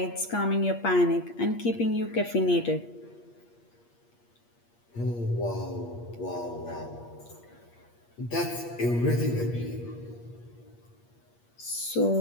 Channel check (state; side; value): late; right; 8.5 ms